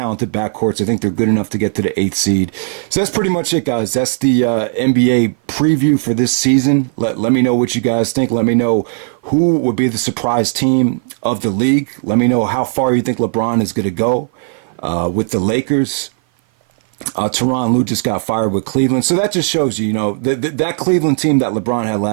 backcourts. I think they're good enough to get to the 8th seed. So that's pretty much it, guys. That's the NBA preview for this season. Let me know what you guys think. Let me know who would be the surprise team of the league. Let me know how far you think LeBron is going to go with the Lakers. Tyronn Lue just got fired with Cleveland. So that just shows you, that Cleveland team that LeBron had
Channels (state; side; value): silent; left; 55 dB below the other